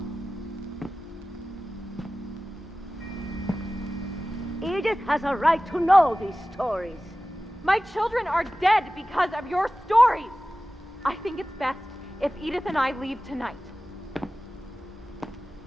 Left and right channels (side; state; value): both; normal; correlation 0.96